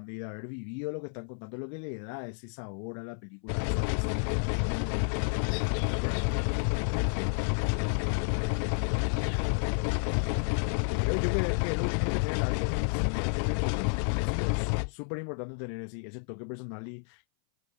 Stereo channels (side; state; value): right; silent; 57 dB below the other